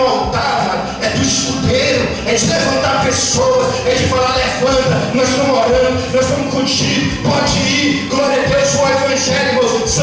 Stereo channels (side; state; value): both; identical; correlation 1.00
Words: altar, é do escudeiro, é de levantar pessoas, é de falar, levanta, nós estamos orando, nós estamos contigo, pode ir, glória a Deus. O evangelho, irmãos,